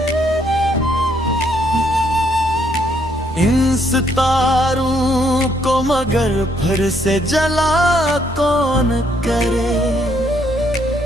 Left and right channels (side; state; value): both; normal; correlation 0.70